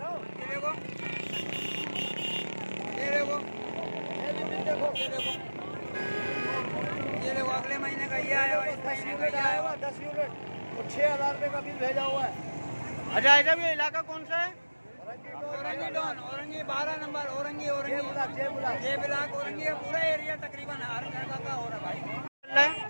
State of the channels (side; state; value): both; inverted; correlation -1.00